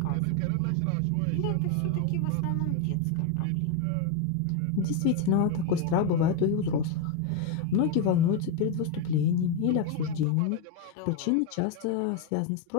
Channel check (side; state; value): both; different; correlation 0.01